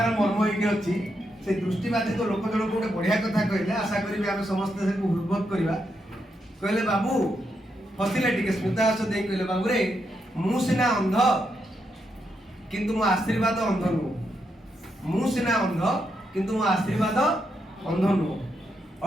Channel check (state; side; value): normal; both; correlation 0.82